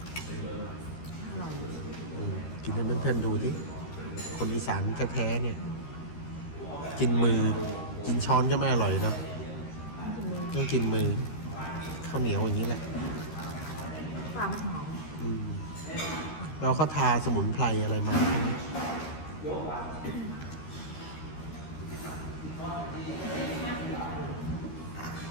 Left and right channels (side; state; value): right; late; 13 ms